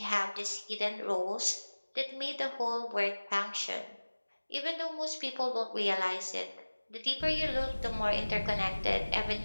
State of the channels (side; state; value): both; inverted; correlation -1.00